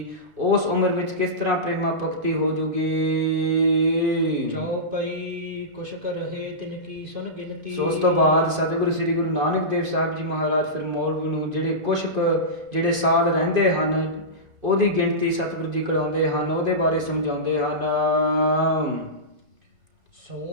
ਉਸ ਉਮਰ ਵਿੱਚ ਕਿਸ ਤਰ੍ਹਾਂ ਪ੍ਰੇਮਾ ਭਗਤੀ ਹੋ ਜੂਗੀ। ਚਉਪਈ ਕੁਸ਼ਕ ਰਹੇ ਤਿਨ ਕੀ ਸੁਨ ਗਿਣਤੀ। ਸੋ ਉਸ ਤੋਂ ਬਾਅਦ ਸਤਿਗੁਰੂ ਸ੍ਰੀ ਗੁਰੂ ਨਾਨਕ ਦੇਵ ਸਾਹਿਬ ਜੀ ਮਹਾਰਾਜ ਫਿਰ ਮੌਲਵੀ ਨੂੰ ਜਿਹੜੇ ਕੁਸ਼ਕ ਜਿਹੜੇ ਸਾਲ ਰਹਿੰਦੇ ਹਨ ਉਹਦੀ ਗਿਣਤੀ ਸਤਿਗੁਰੂ ਜੀ ਕਰਾਉਂਦੇ ਹਨ, ਉਹਦੇ ਬਾਰੇ ਸਮਝਾਉਂਦੇ ਹਨ।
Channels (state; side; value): late; left; 2.5 ms